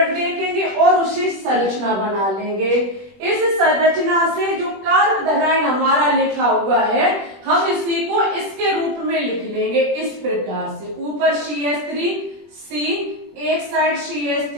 देखेंगे और उसे संरचना बना लेंगे। इस संरचना से जो कार्बोधनाइन हमारा लिखा हुआ है हम इसी को इसके रूप में लिख लेंगे इस प्रकार से, ऊपर CH3 C, एक साइड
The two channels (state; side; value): late; left; 21 ms